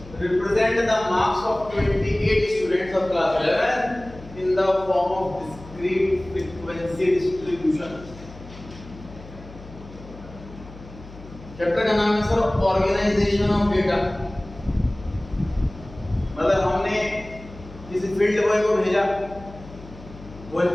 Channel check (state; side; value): noise; left; hum, 17 dB below the sound